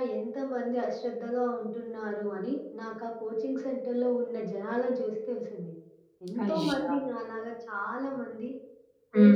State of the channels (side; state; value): both; identical; correlation 1.00